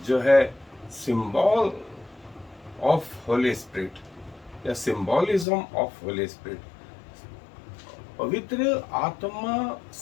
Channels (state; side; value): drops out; right; at 5.5 s